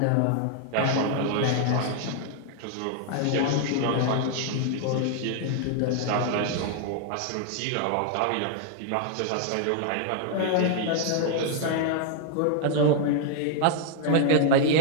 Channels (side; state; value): both; different; correlation 0.00